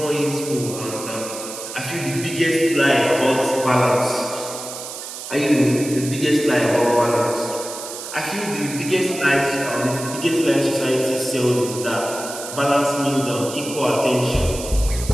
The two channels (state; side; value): noise; right; hiss, 10 dB below the sound